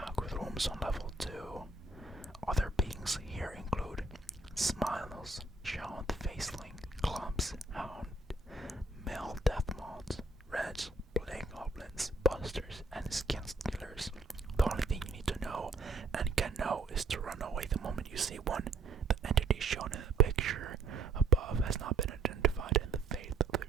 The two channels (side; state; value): left; quieter; 3.3 dB